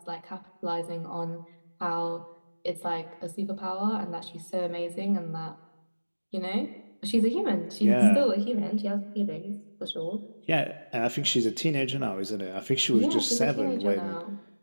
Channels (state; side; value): inverted; both; correlation -1.00